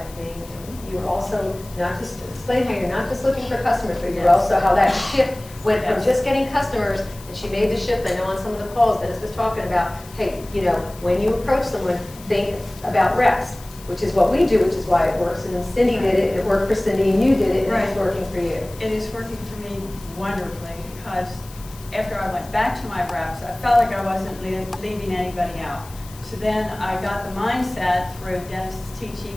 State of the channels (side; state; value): left; noise; hiss, 20 dB below the sound